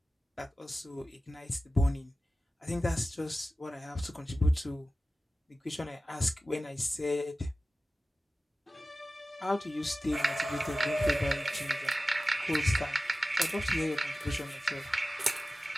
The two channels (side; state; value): both; normal; correlation 0.95